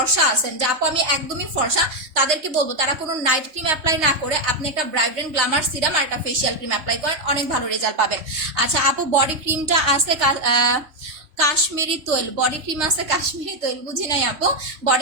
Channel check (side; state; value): left; late; 3.2 ms